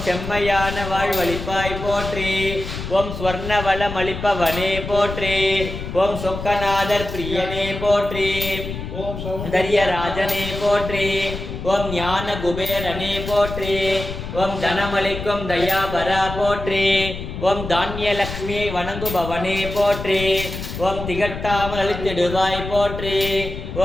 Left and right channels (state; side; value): noise; left; rumble, 8 dB below the sound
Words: செம்மையான வாழ்வளிப்பாய் போற்றி ஓம் ஸ்வர்ண வளம் அளிப்பவனே போற்றி ஓம் சொக்கநாதர் பிரியனே போற்றி ஓம் சௌந்தர்ய ராஜனே போற்றி ஓம் ஞான குபேரனே போற்றி. ஓம் தனமளிக்கும் தயாபரா போற்றி. ஓம் தானியலக்ஷ்மியை வணங்குபவனே போற்றி. ஓம் திகட்டாமல் அளித்திடுவாய் போற்றி.